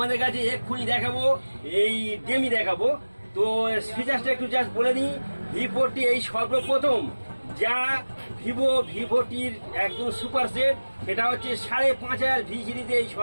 কাছে এক্ষুনি দেখাবো, এই গেমই দেখাবো। তো ফিচার্সটা একটু জাস্ট বলে দিই। V40 এই সর্বপ্রথম যা ভিভোটির একদম সুপার সেট, সেটা হচ্ছে 5,500 ভি সিরিজে এই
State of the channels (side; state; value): both; inverted; correlation -1.00